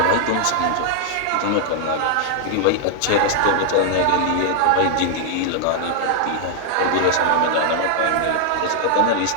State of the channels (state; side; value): different; both; correlation -0.01